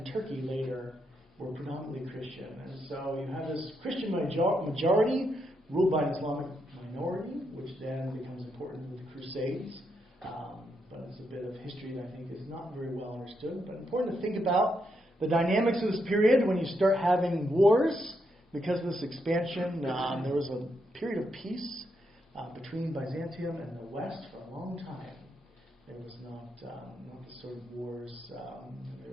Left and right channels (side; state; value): both; normal; correlation 0.80